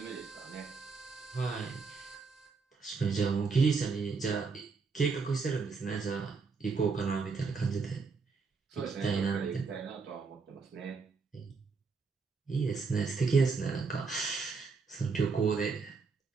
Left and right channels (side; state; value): left; quieter; 4.8 dB